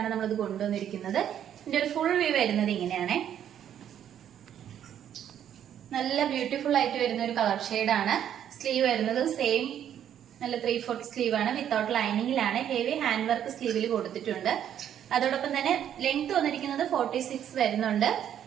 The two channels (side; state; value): left; quieter; 9.9 dB